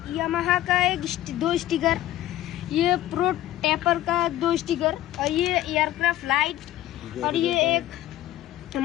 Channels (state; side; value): quieter; right; 14.2 dB